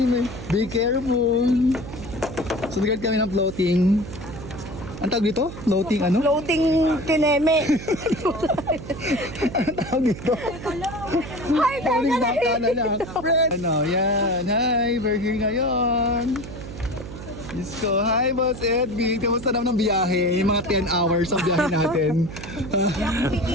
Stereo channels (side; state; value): right; noise; hum, 11 dB below the sound